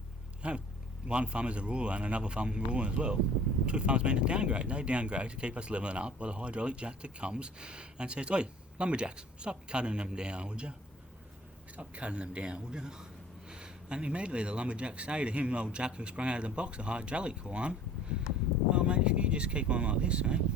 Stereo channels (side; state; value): both; normal; correlation 0.49